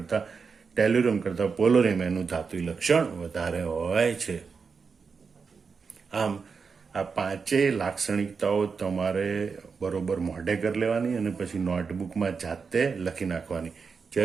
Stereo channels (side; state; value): left; quieter; 5.3 dB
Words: ટેલ્યુરમ કરતા પોલોનિયમ એનું ધાત્વી લક્ષણ વધારે હોય છે. આમ આ પાંચેય લાક્ષણિકતાઓ તમારે બરોબર મોઢે કરી લેવાની અને પછી નોટબુકમાં જાતે લખી નાખવાની.